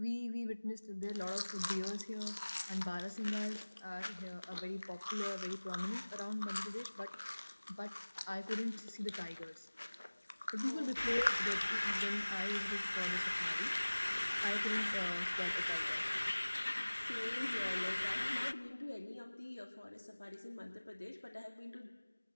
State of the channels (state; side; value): inverted; both; correlation -1.00